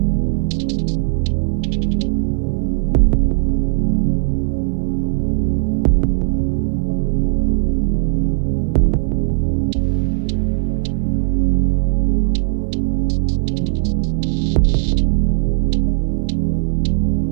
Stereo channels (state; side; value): silent; left; 57 dB below the other